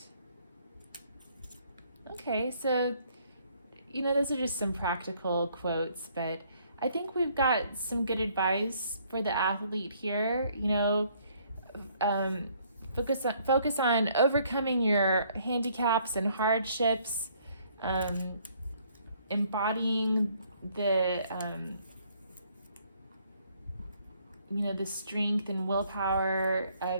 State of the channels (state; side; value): inverted; both; correlation -0.64